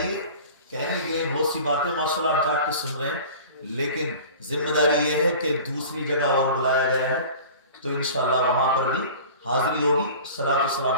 کہنے کے بہت سی باتیں ماشاءاللہ آپ جا کے سن رہے ہیں لیکن ذمہ داری یہ ہے کہ دوسری جگہ اور بلایا گیا ہے تو انشاءاللہ وہاں پر بھی حاضری ہوگی، صلاۃ و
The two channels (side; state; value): both; inverted; correlation -0.41